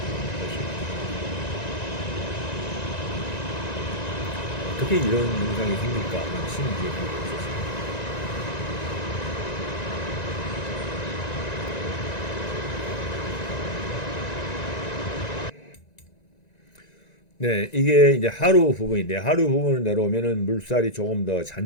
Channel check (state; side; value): late; right; 1.9 ms